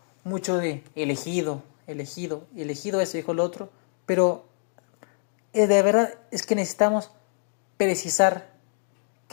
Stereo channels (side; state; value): right; silent; digital silence